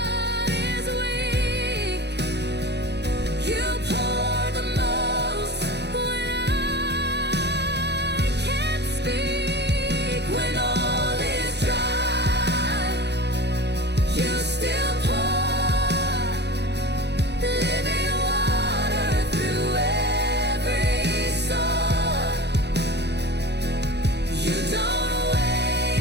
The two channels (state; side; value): late; left; 0.49 ms